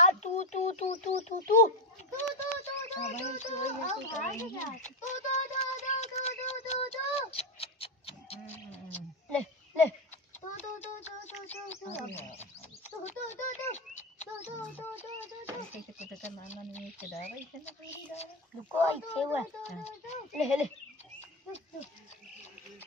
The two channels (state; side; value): normal; both; correlation 0.10